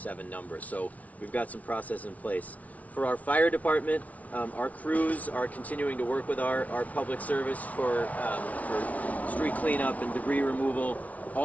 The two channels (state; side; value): late; right; 0.069 ms